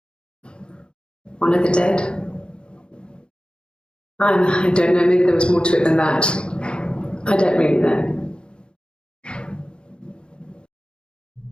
One of the dead. I don't know, maybe there was more to it than that. I don't really know.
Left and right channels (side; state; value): right; late; 0.053 ms